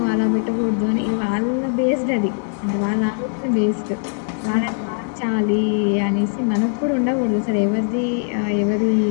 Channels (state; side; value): silent; right; 65 dB below the other